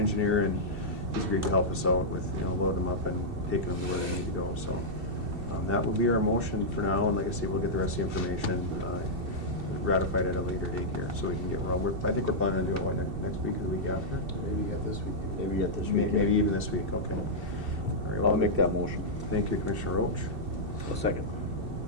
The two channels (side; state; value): left; late; 2.7 ms